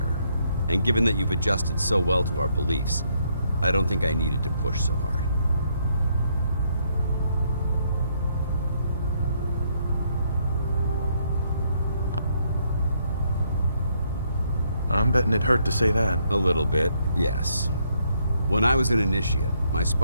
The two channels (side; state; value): both; inverted; correlation -0.72